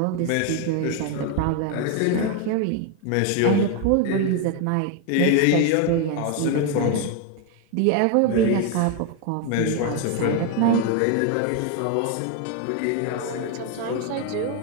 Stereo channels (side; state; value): both; different; correlation 0.01